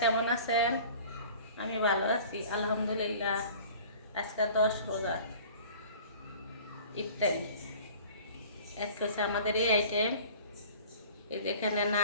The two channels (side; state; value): both; inverted; correlation -0.45